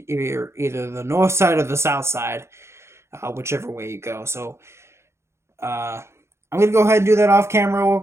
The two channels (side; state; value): left; late; 0.13 ms